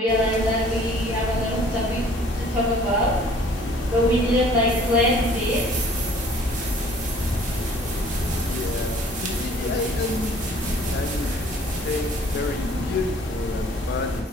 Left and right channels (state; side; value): normal; both; correlation 0.54